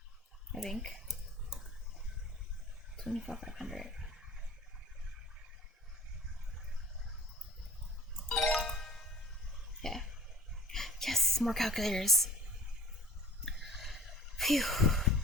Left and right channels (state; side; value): normal; both; correlation 0.43